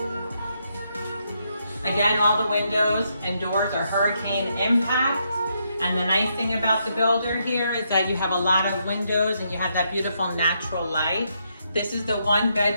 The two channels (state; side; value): inverted; both; correlation -0.78